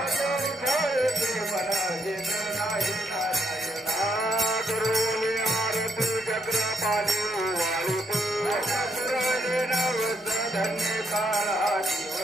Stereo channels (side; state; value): both; normal; correlation 0.73